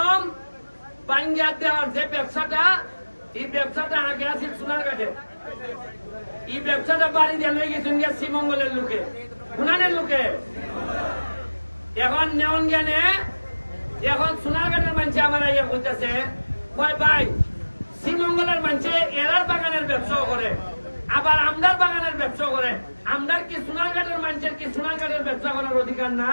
বাঙ্গা দেওয়ার যে ব্যবসাটা, এই ব্যবসাটা আগে আছে সোনারঘাটে। এই ব্যবসাটা বাড়ি দিয়ে লই গেছেন শ্রীমঙ্গলের লোকে, গুনানের লোকে। এখন নেওয়ান জ্ঞানে এখন সোনারঘাটের মানুষ আমার ইয়ে করতেছে, কয় ভাই শ্রীমঙ্গলের মানুষে এরার বাগানের ব্যবসাও করে, আবার আমদার বাগানের ব্যবসা করে। আমদার কি সোনারঘাটের মানুষের কি সোনারঘাটের ব্যবসা করার অধিকার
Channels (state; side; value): inverted; both; correlation -1.00